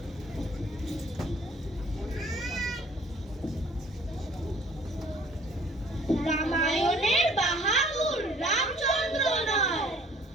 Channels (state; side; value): normal; both; correlation 0.55